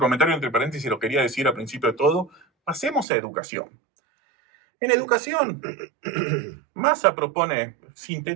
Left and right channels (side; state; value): left; drops out; at 3.1 s